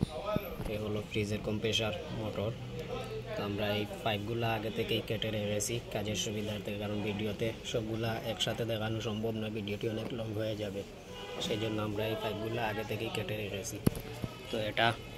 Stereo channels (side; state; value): both; identical; correlation 1.00